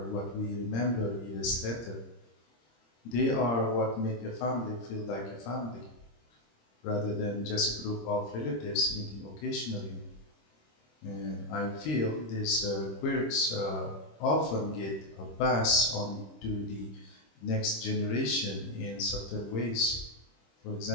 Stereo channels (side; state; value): right; late; 26 ms